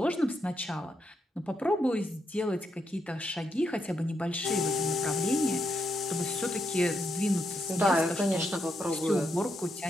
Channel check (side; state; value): both; normal; correlation 0.80